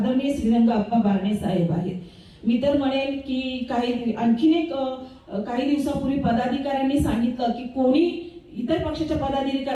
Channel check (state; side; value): identical; both; correlation 1.00